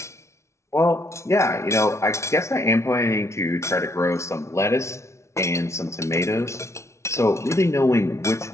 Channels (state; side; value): late; right; 0.13 ms